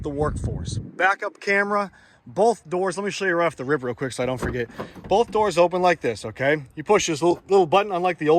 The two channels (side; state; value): both; identical; correlation 1.00